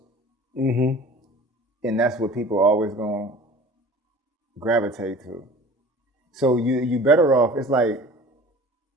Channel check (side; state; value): both; normal; correlation 0.43